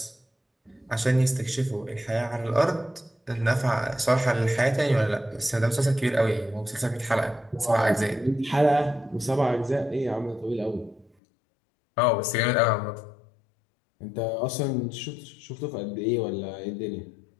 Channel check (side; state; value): right; drops out; at 11.1 s